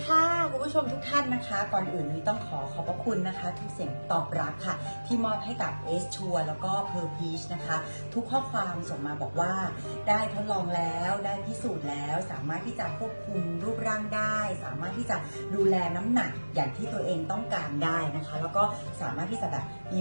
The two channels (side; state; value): both; inverted; correlation -1.00